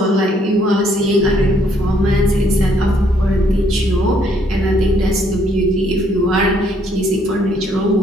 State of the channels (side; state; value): both; normal; correlation 0.67